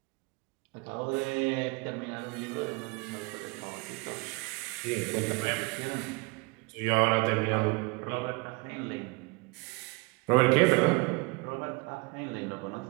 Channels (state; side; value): quieter; left; 27.8 dB